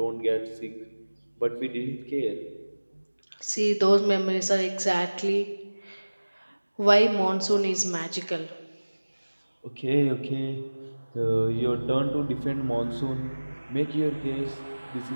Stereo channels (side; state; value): both; inverted; correlation -1.00